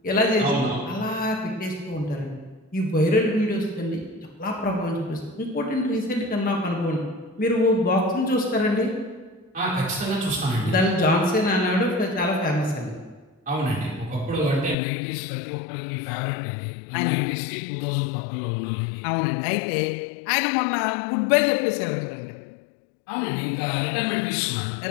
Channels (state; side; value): drops out; right; at 14.8 s